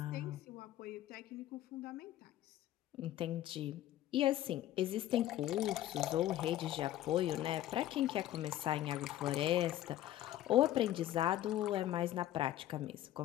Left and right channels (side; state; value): right; quieter; 13.4 dB